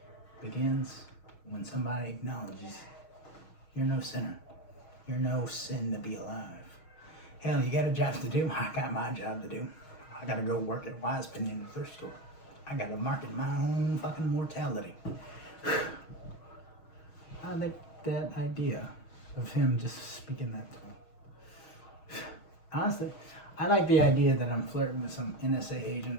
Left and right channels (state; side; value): late; right; 6.3 ms